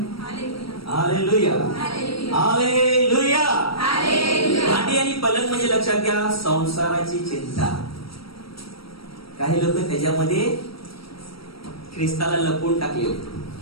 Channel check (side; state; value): right; late; 0.75 ms